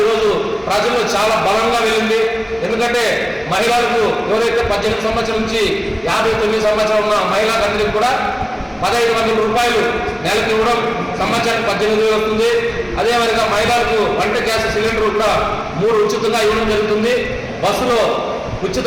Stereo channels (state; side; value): identical; both; correlation 1.00